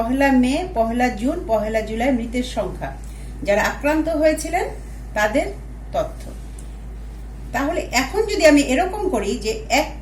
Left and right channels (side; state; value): both; identical; correlation 1.00